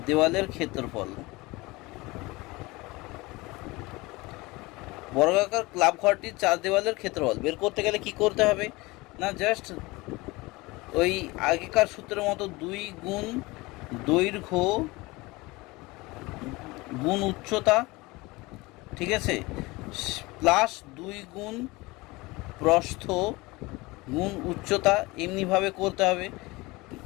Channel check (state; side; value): quieter; right; 22.6 dB